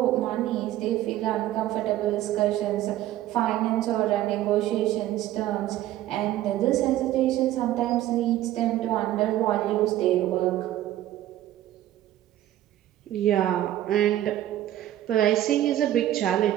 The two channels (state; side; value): quieter; left; 13.6 dB